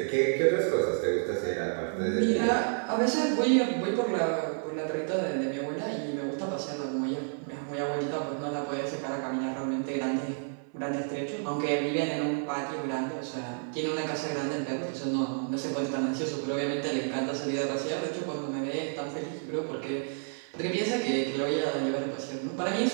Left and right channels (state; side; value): silent; left; 58 dB below the other